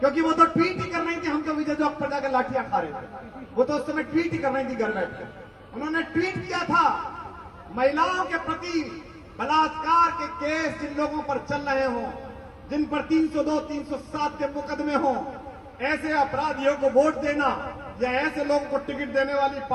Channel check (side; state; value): both; identical; correlation 1.00